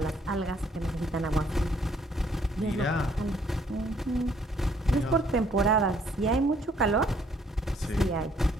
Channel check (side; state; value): both; normal; correlation 0.65